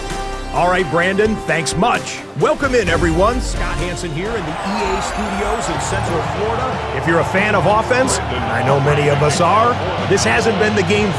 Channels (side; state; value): both; identical; correlation 1.00